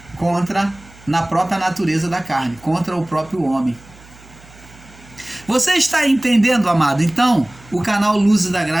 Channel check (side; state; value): right; noise; hum, 24 dB below the sound